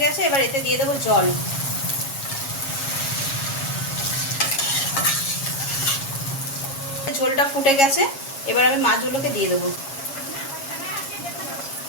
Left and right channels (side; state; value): right; late; 7.3 ms